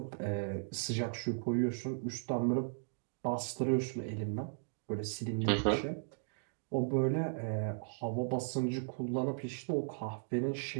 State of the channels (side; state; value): left; silent; digital silence